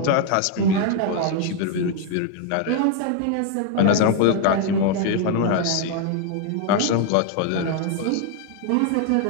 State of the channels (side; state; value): both; different; correlation 0.00